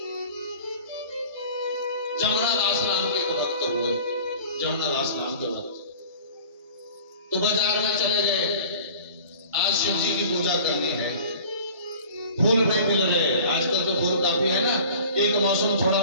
जमुनादास नाम के एक भक्त हुए, जमुनादास नाम के भक्त तो बाजार में चले गए, आज शिव जी की पूजा करनी है, फूल नहीं मिल रहे। आजकल तो फूल काफी है ना, एक मौसम थोड़ा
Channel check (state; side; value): inverted; both; correlation -0.43